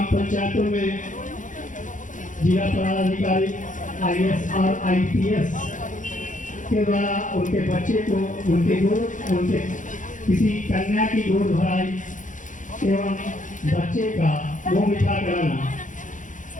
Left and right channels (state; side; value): late; right; 0.37 ms